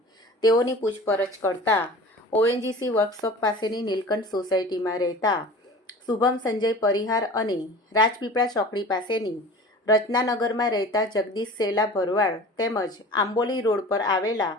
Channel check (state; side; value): normal; both; correlation 0.39